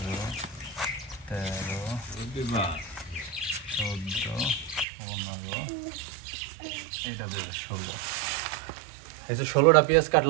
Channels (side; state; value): left; drops out; at 4.9 s